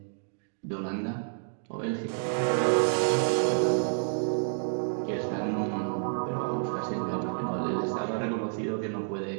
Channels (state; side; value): silent; left; digital silence